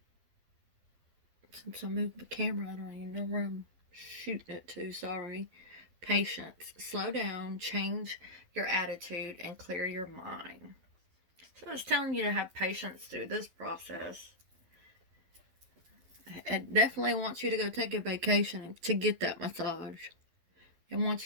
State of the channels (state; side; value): late; left; 12 ms